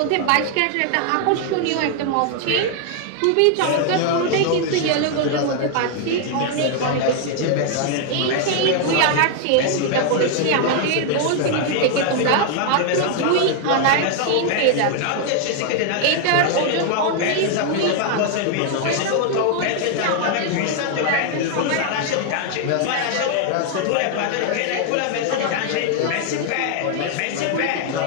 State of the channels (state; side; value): different; both; correlation 0.00